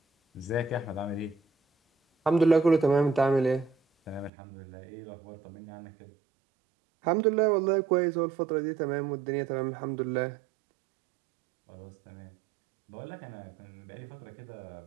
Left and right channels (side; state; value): left; drops out; at 4.3 s